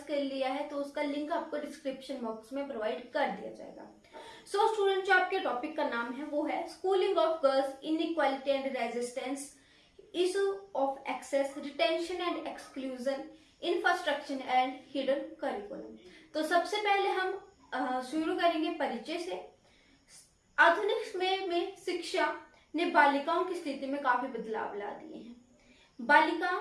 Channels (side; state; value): both; identical; correlation 1.00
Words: कर लिया है, तो उसका लिंक आपको डिस्क्रिप्शन बॉक्स में प्रोवाइड कर दिया जाएगा। सो स्टूडेंट, जो आपके टॉपिक का नाम है वो है schooling of girls, inequality and resistance, issue of access, retention and exclusion, infrastructure and hidden curriculum. तो सबसे पहले हम शुरू करेंगे परिचय से। आधुनिक समय में शिक्षा ने बालिकाओं की स्थिति में काफी बदलाव ला दिए हैं। बालिका